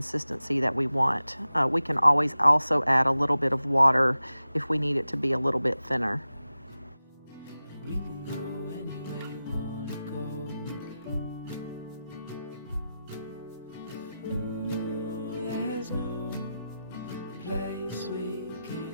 that we want. We can always also add a little bit of water if we need it to be a little bit thinner. We can go anywhere you wanna go. Ooh, there's no place we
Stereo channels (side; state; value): both; inverted; correlation -0.93